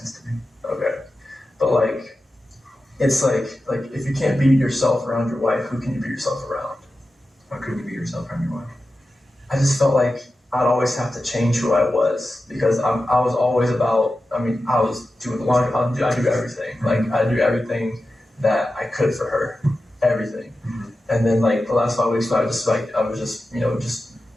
to me. Okay. But like, it's like if you can't be yourself around your wife, who can you be yourself around? Why couldn't you be yourself around your wife? I just felt like I'd always have to change who I was because I was always about, I was doing the laundry, I do everything. Like, I do everything that I could for her. Everything. Mm-hmm. And then like the last 5 weeks, I was just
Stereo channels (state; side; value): normal; both; correlation 0.92